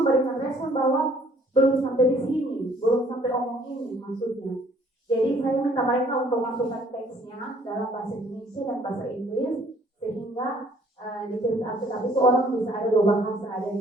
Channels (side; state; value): both; normal; correlation 0.60